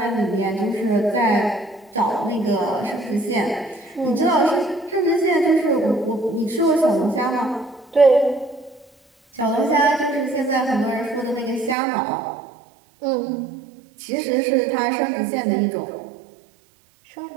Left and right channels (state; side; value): drops out; left; at 11.8 s